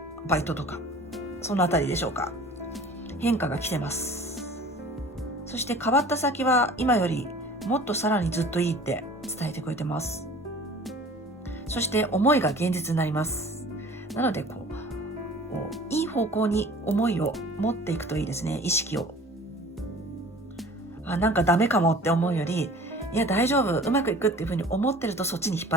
バイトとか、そのあたりでしょうか。変化が来てます。そして変わった先は今よりもっとさらにずっといいって伝えてくれてます。そして思いが現実になります。なのでいい方向に思いを持っていくといいですね。意識を。なんかダメかもって思うより、いや大丈夫、うまくいくっていうふうに思ってるとそっちに引っ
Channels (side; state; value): both; normal; correlation 0.45